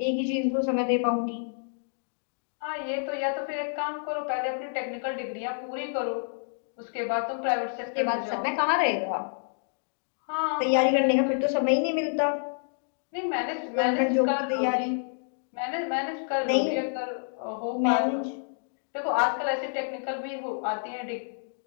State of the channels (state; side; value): silent; right; digital silence